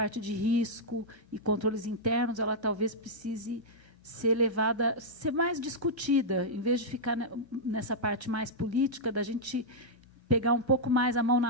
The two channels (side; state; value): both; normal; correlation -0.07